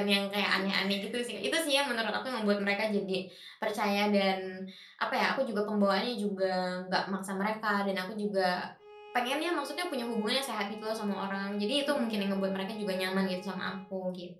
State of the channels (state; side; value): identical; both; correlation 1.00